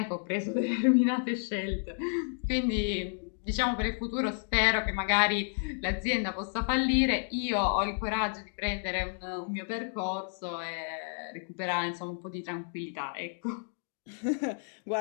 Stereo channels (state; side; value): silent; right; 57 dB below the other